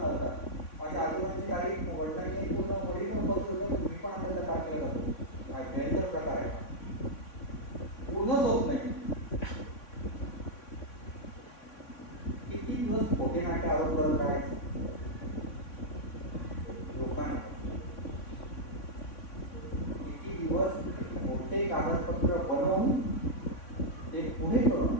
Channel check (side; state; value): right; late; 3.6 ms